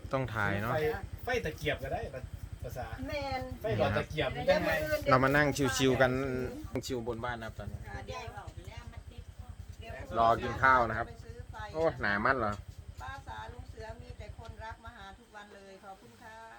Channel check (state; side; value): identical; both; correlation 1.00